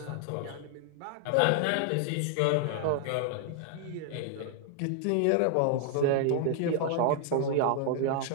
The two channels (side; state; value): both; different; correlation 0.00